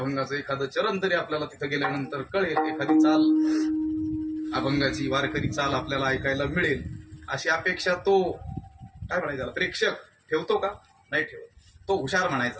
एखादं चरण तरी आपल्याला तिथं गेल्यानंतर कळेल, एखादी चाल अभंगाची वारकरी चाल आपल्याला ऐकायला मिळेल, अशी अपेक्षा तो काय म्हणायचा प्रेक्षक ठेवतो का? नाही ठेवत. तो हुशार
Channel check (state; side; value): identical; both; correlation 1.00